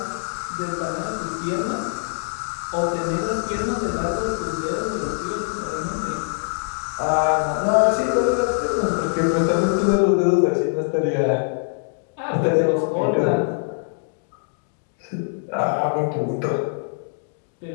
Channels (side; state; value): right; silent; digital silence